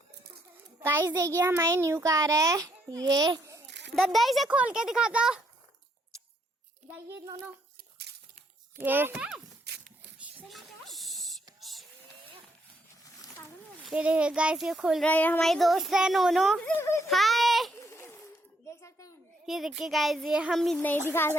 गाइस देखिए हमारी न्यू कार है ये। दद्दा इसे खोल के दिखा दो। ये दोनों ये देखिए गाइस ये खोल रहा है, हमारी दोस्त है नोनो। हाय देख सकते हैं। ये देखिए गाइस ये हम भी नहीं दिखा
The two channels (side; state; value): both; normal; correlation 0.73